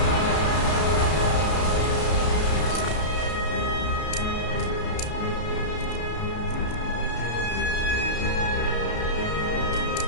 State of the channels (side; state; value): right; late; 33 ms